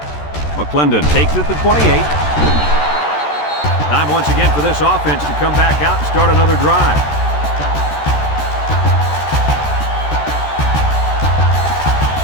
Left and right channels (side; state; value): right; late; 13 ms